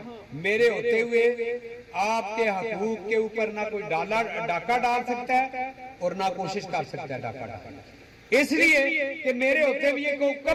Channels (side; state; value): both; identical; correlation 1.00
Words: मेरे होते हुए आपके हकूक के ऊपर ना कोई डाका डाल सकता है और ना कोशिश कर सकता है डाका डालने। इसलिए कि मेरे होते हुए को